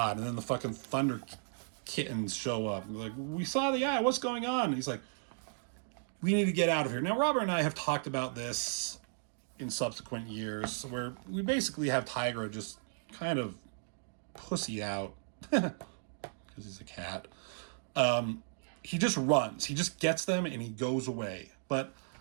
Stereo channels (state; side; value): silent; left; digital silence